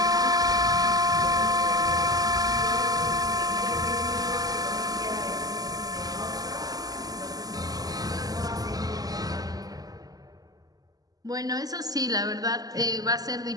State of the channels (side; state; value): left; late; 0.18 ms